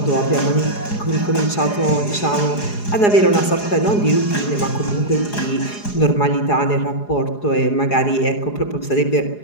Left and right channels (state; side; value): late; right; 4.8 ms